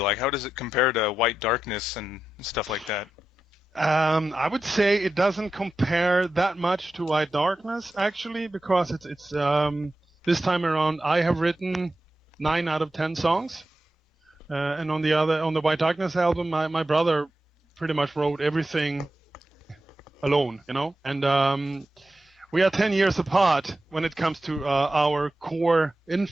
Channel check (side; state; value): both; normal; correlation 0.91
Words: How does it compare to White Darkness and stuff like that? I would say it doesn't compare that much to White Darkness, actually, because it's this time around I have written 9 out of 10 songs, and on the White Darkness album, my brother pretty much wrote everything alone, and we are 10 years apart when it comes to our core